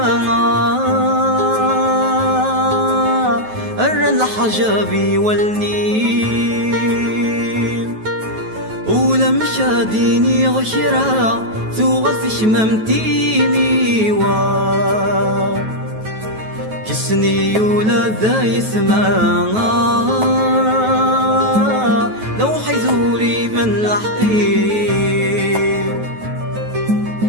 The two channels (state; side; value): late; left; 9.3 ms